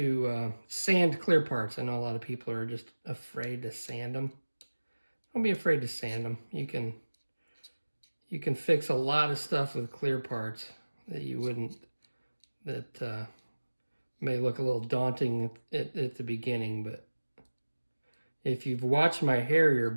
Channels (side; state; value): both; inverted; correlation -1.00